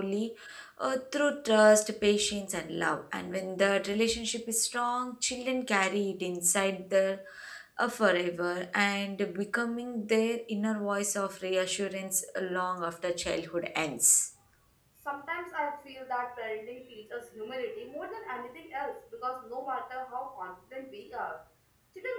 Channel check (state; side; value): identical; both; correlation 1.00